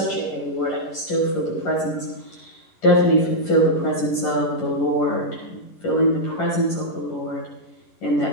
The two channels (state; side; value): late; right; 11 ms